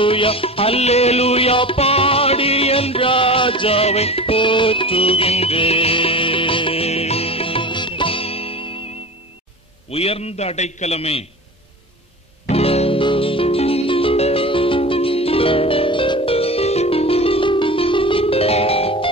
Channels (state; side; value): normal; both; correlation 0.33